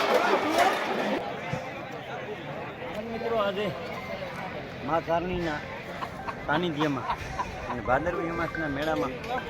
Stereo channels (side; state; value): both; identical; correlation 1.00